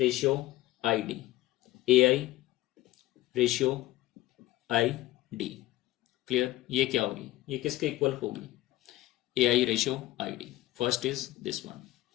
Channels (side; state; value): right; quieter; 16.3 dB